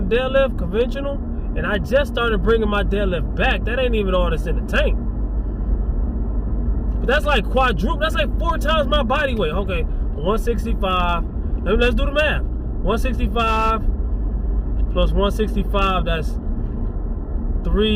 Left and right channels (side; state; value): both; identical; correlation 1.00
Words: the deadlift, conventional. And I just started bringing my deadlift back. That ain't even all that's in the tank. But that's like quadruple. That's like 4 times my body weight. Okay, 165. Let's do the math. 165 plus 165, that's